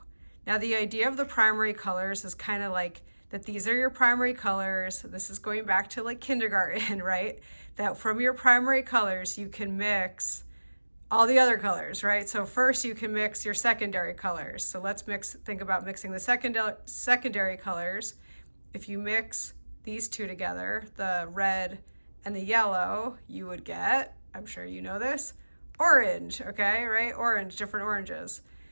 Now the idea of the primary colors is kind of like that these are your primary colors. This is going back to like kindergarten, right? That from your primary colors, you can mix all the other colors, right? So first you can mix your secondary colors. So let's think about mixing the secondary colors. If you mix these two together, the red and the yellow, you would get, I'm sure you know this, orange, okay, right? Orange, different oranges.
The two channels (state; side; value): inverted; both; correlation -1.00